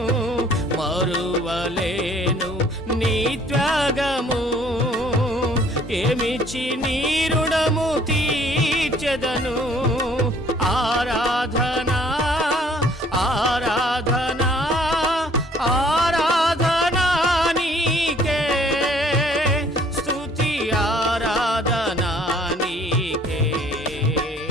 మరువలేను నీ త్యాగము, ఏమిచ్చి నీ రుణము తీర్చెదను. ఆరాధనా ఆరాధనా ఆరాధనా నీకే, స్తుతి ఆరాధనా నీకే.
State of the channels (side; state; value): both; normal; correlation 0.58